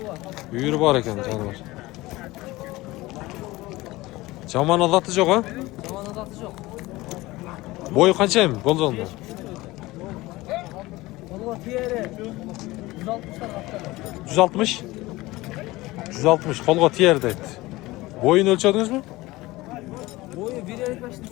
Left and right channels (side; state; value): right; quieter; 19.6 dB